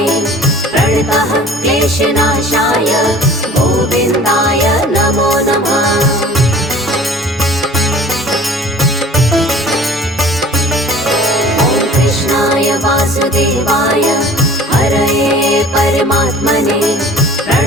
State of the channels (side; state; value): both; normal; correlation 0.46